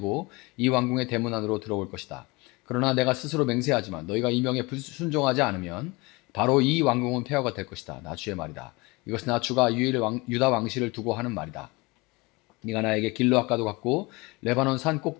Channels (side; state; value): right; quieter; 24.9 dB